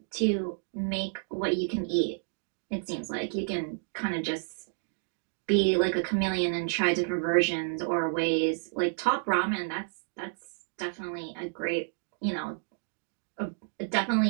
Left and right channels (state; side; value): silent; left; digital silence